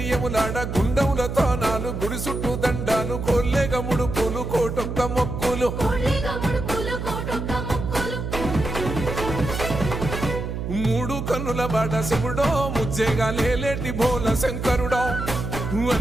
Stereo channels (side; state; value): right; noise; hum, 4 dB below the sound